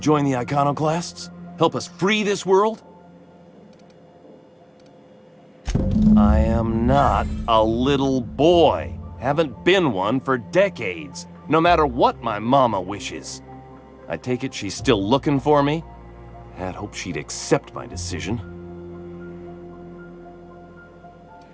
the Iconoclasts? Help us free this world? I am not a little boy. Haven't been one for decades, no matter what my mama wishes. I take it she's still looking for me? Had hoped she'd accept my decision.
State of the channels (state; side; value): identical; both; correlation 1.00